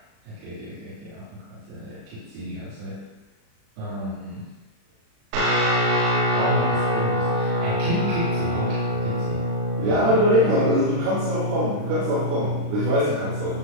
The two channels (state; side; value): late; left; 36 ms